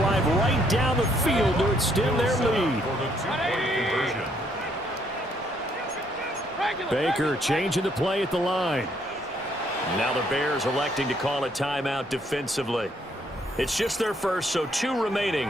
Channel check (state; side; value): normal; both; correlation 0.69